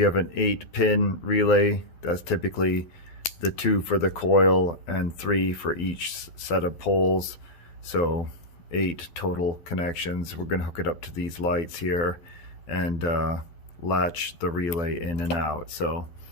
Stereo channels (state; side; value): late; right; 12 ms